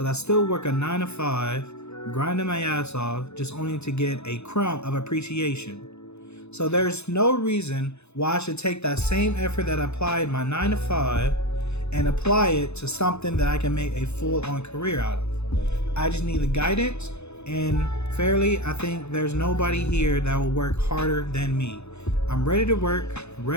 I still work a 9 to 5, grinding my ass off, just only to get a crumb of appreciation. So there's no reason why I should take that same effort that I applied my 9 to 5 and apply it to something that I can make a full-on career out of. I just need the guidance, and fairly, I think there's nobody here that will work harder than me. I'm ready to work,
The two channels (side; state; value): right; late; 0.81 ms